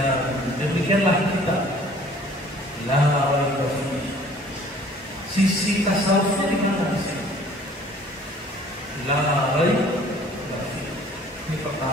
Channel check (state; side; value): normal; both; correlation 0.52